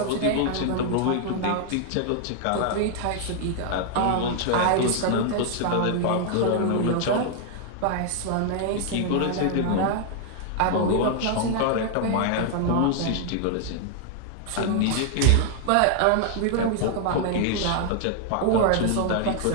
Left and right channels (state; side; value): different; both; correlation 0.00